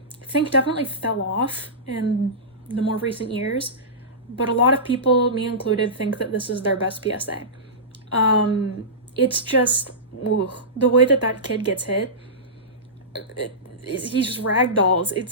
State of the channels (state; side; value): normal; both; correlation -0.19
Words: Think definitely fell off in the more recent years, but a lot of people, me included, think that this is their best PSA. It's just, the way that kid gets hit, he just ragdolls.